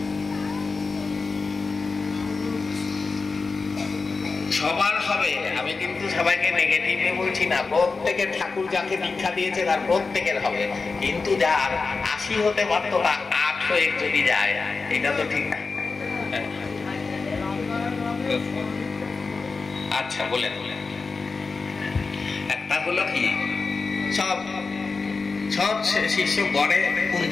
সবার হবে, আমি কিন্তু সবাইকে নেগেটিভে বলছি না। প্রত্যেকের ঠাকুর যাকে দীক্ষা দিয়েছে তার প্রত্যেকের হবে, কিন্তু যার ৮০ হতে পারত না ৮ হয়ে যদি যায়, এটা তো ঠিক না। আচ্ছা বলেন। একটা হলো কি, সব শিষ্য গড়ে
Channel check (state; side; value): quieter; right; 4.3 dB